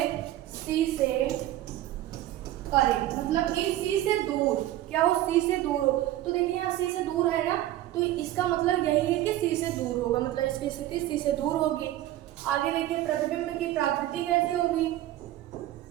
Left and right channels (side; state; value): left; quieter; 14.3 dB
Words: C से परे, मतलब कि C से दूर। क्या हो, C से दूर हो। तो देखिए यहाँ C से दूर है ना, तो इसका मतलब यही है कि C से दूर होगा, मतलब इसकी स्थिति C से दूर होगी। आगे देखिए प्रतिबिंब की प्रकृति कैसी होगी,